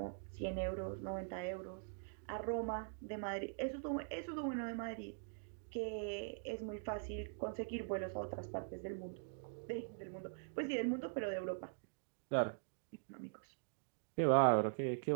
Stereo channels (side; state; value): left; silent; digital silence